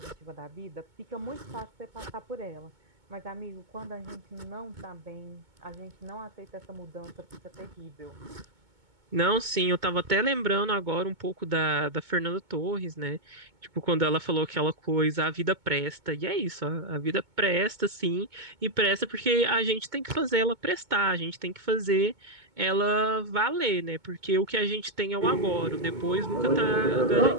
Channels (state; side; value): late; left; 2.2 ms